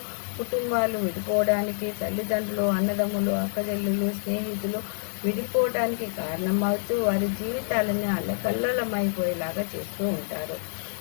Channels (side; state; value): right; silent; digital silence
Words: కుటుంబాలు విడిపోవడానికి, తల్లిదండ్రులు, అన్నదమ్ములు, అక్కచెల్లులు, స్నేహితులు విడిపోవడానికి కారణమవుతూ వారి జీవితాలను అల్లకల్లలమైపోయేలాగా చేస్తూ ఉంటారు.